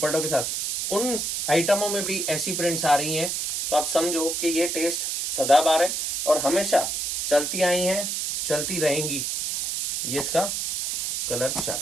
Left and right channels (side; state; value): right; noise; hiss, 2 dB below the sound